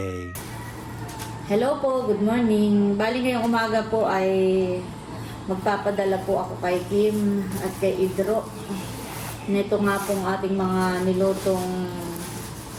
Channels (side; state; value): both; identical; correlation 1.00